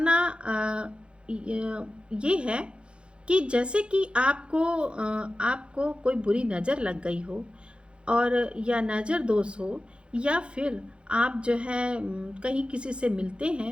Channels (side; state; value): left; late; 0.056 ms